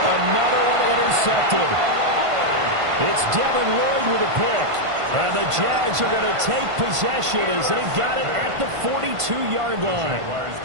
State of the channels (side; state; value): left; late; 1.5 ms